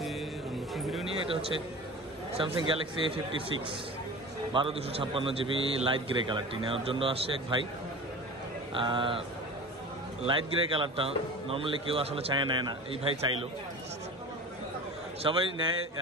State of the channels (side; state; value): both; normal; correlation 0.36